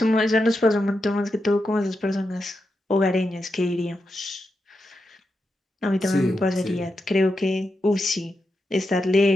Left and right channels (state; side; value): normal; both; correlation 0.87